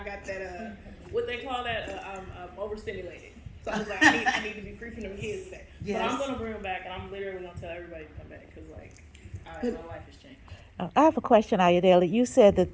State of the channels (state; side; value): identical; both; correlation 1.00